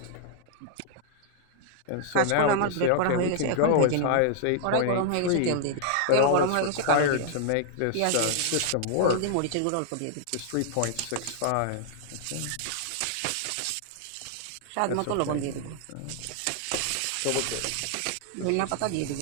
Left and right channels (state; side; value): different; both; correlation -0.01